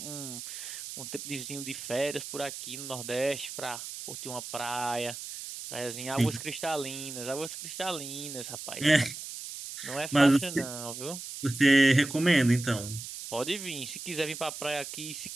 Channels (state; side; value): noise; right; hiss, 9 dB below the sound